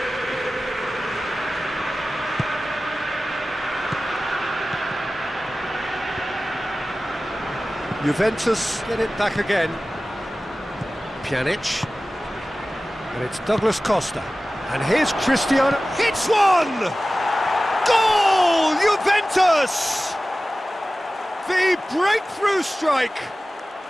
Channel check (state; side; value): normal; both; correlation 0.96